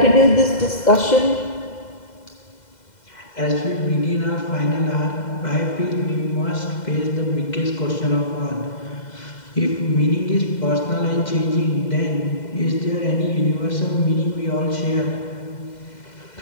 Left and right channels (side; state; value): right; late; 2.0 ms